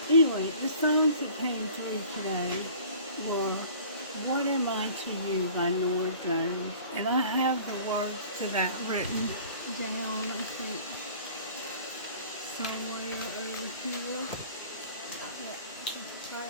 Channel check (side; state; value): both; inverted; correlation -0.48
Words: Anyway, the songs that came through today were "What Am I to You" by Nora Jones. And I have the words to that written down, I think, somewhere over here. Yeah, I think it's right